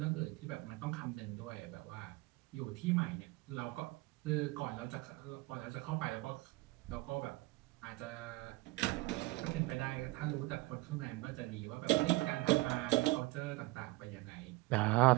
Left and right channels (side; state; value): left; quieter; 21.8 dB